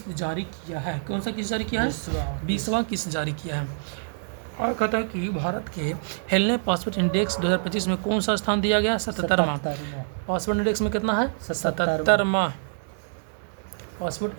जारी किया है। कौन सा किस्त जारी किया है? 20वां किस्त जारी किया है। और कहता है कि भारत के हेलने पासपोर्ट इंडेक्स 2025 में कौन सा स्थान दिया गया? 77वां। पासपोर्ट इंडेक्स में कितना है? 77वां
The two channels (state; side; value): silent; left; 60 dB below the other